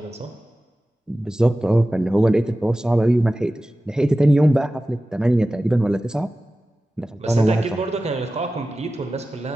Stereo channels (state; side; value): normal; both; correlation 0.95